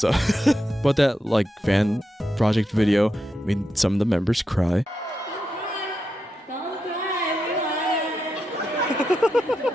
that like fan project video made some of the members cry. Don't cry, everyone.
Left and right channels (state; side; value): normal; both; correlation 0.86